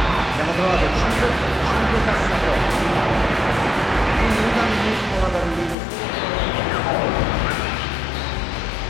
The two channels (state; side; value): drops out; right; at 5.8 s